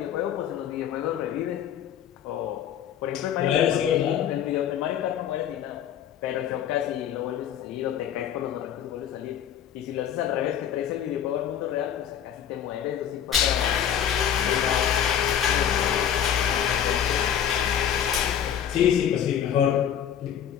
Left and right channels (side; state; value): right; quieter; 9.5 dB